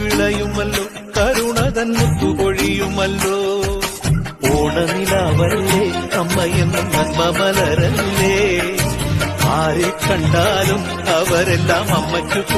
വിളയുമല്ലോ, കരുണ തൻ മുത്തുപൊഴിയുമല്ലോ. ഓണനിലാവല്ലേ അമ്മയെന്നും നന്മ മലരല്ലേ, ആരെ കണ്ടാലും അവരെല്ലാം അമ്മയ്ക്ക്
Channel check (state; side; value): identical; both; correlation 1.00